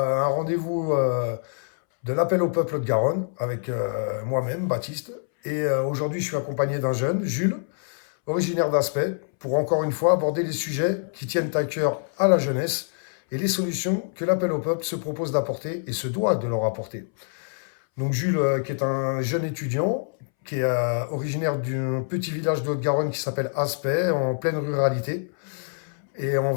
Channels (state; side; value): silent; right; 61 dB below the other